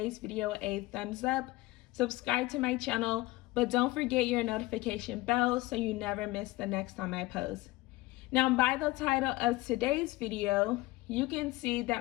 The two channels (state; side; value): quieter; right; 20.0 dB